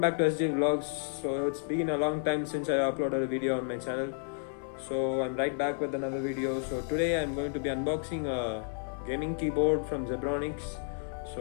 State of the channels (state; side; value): silent; right; digital silence